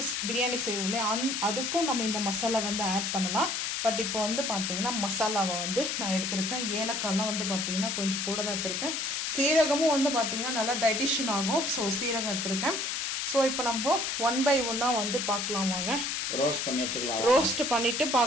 பிரியாணி செய்வோம் இல்லையா, அதுக்கும் நம்ம இந்த மசாலா வந்து ஆட் பண்ணலாம். பட் இப்போ வந்து பார்த்தீங்கன்னா மசாலாவை வந்து நான் எடுத்திருக்கேன். ஏலக்காய்லாம் வந்து பார்த்தீங்கன்னா கொஞ்சம் கூட தான் எடுத்திருக்கேன். சீரகமும் வந்து பார்த்தீங்கன்னா நல்லா டைஜஷன் ஆகும். ஸோ சீரகம் எடுத்திருக்கேன். ஸோ இப்போ நம்ம 1 by 1 வந்து பார்க்கலாம் வாங்க. ரோஸ்ட் பண்ணிட்டு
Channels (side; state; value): left; noise; hiss, 1 dB below the sound